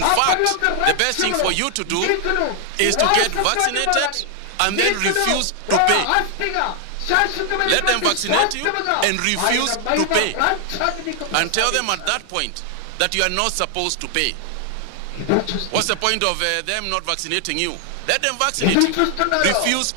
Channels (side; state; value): both; different; correlation 0.00